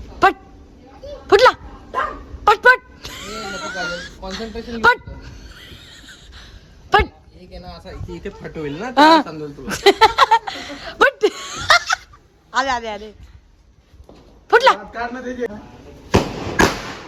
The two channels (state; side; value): identical; both; correlation 1.00